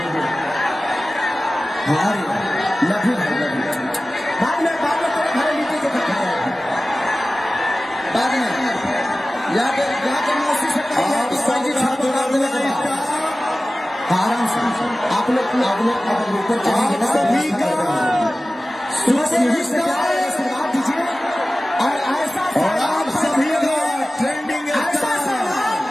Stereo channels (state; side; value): normal; both; correlation 0.96